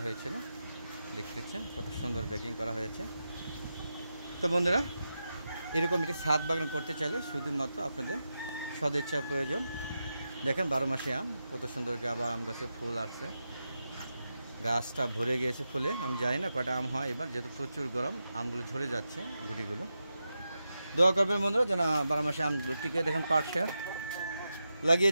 হয়েছিল। দেখতেছেন কত সুন্দর ব্যাগিং করা হয়েছে। তো বন্ধুরা, এরকম একটি ছাদ বাগান করতে চাইলে শুধুমাত্র আপনাদের সদিচ্ছার প্রয়োজন। দেখেন 12 মাসে আম, কত সুন্দর আবার আম গাছে ফুল আসছে, গাছটা ভরে গিয়েছে ফুলে। আমি জানি না কটা আম হয় এবার, যেহেতু প্রচুর গরম আমগুলো ঝরে যাচ্ছে গুটিগুলো। দোয়া করবেন বন্ধুরা যেন 12 মাসে আমগুলো টিকে। দেখেন পাটটা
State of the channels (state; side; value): inverted; both; correlation -0.89